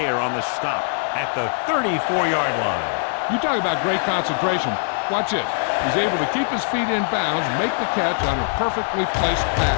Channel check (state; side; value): silent; right; 56 dB below the other